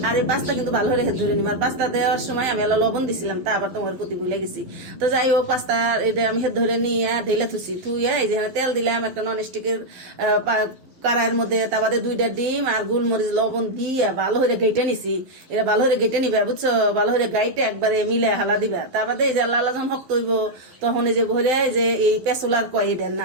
আর এই পাস্তা কিন্তু ভালো করে হেদ ধরে নিবো আর পাস্তা দেওয়ার সময় আমি আল্লাহ লবণ দিছিলাম তা আবার তোমার প্রতি ভুলে গেছি তো যাই হোক পাস্তা এটা আমি হেদ ধরে নিয়ে ঢেলে থুইয়া এই যে তেল দিলাম একটা নন স্টিকের কড়াইয়ের মধ্যে তার বাদে 2টা ডিম আর গোলমরিচ লবণ দিয়ে ভালো করে গেটে নিছি এটা ভালো করে গেটে নিবে বুঝছো ভালো করে গাইটে একবারে মিলে হালা দিবা তার বাদে এই যে আল্লাহ আল্লাহ যখন হক্ত হইব তখন এই যে ভরে যে এই পেসুলার কয় এটার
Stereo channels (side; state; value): left; late; 12 ms